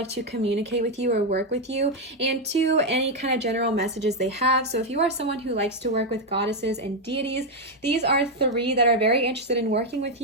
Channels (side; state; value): both; normal; correlation 0.03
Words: to communicate with you or work with you, and two, any kind of general messages they have. So if you are someone who likes to work with goddesses and deities, these are three that are very interested in working with